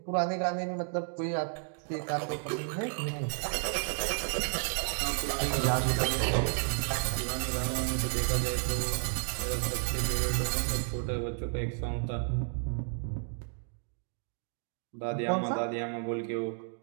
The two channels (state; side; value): silent; left; 56 dB below the other